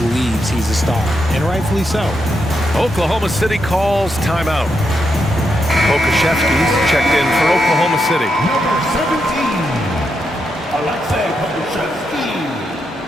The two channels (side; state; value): both; normal; correlation 0.83